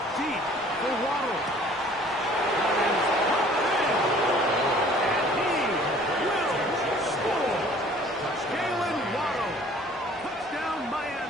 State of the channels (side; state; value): both; normal; correlation 0.53